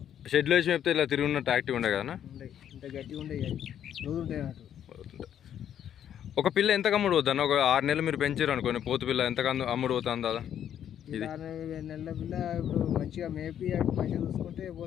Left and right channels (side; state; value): right; quieter; 9.8 dB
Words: షెడ్లో వేసి మేపితే ఇలా తిరిగి ఉన్నట్టు యాక్టివ్ ఉండే కదా? ఇంత గట్టిగా ఉండే రోజు ఉంటాయి అన్నట్టు. ఒక పిల్ల ఎంత అమ్ముడు పోద్ది అన్న? ఒక 6 నెలలు మీరు పెంచారు అనుకోండి, పోతు పిల్ల ఎంత అమ్ముడు పోతుంది దాదా? ఇది 6 నెలల పిల్ల ఇప్పుడు మంచిగా మేపి మంచిగా చూసుకుంటే